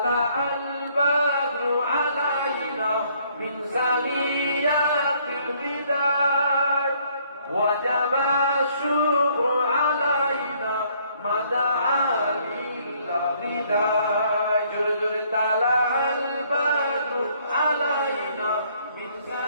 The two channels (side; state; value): both; inverted; correlation -0.65